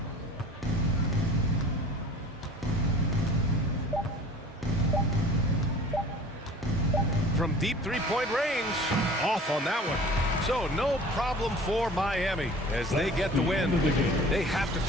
From deep three-point range. Off on that one. So no problem for Miami as they get the win. They have to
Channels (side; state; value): both; normal; correlation 0.44